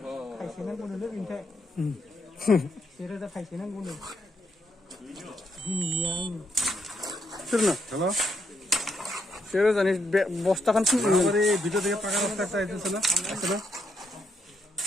kaisinan guna le binte serius dah kaisinan guna yang sirna hello serius ani bosta kan sini हमारे वीडियो देखे पका रास्ता একটা আইতেছে না আছে না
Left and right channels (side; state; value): both; normal; correlation 0.77